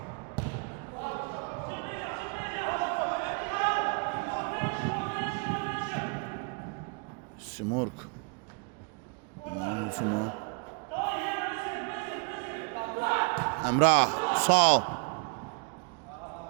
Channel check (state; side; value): quieter; left; 35.3 dB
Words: Simurg. Emrah, sağ ol.